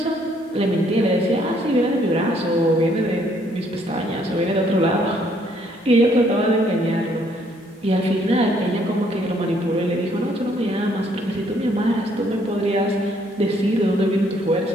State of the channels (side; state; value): both; normal; correlation 0.66